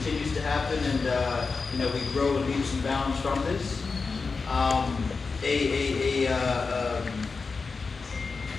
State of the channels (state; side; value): quieter; right; 4.5 dB